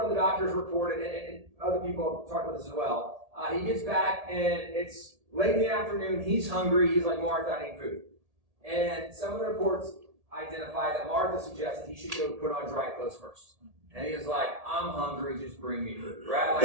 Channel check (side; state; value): left; late; 1.8 ms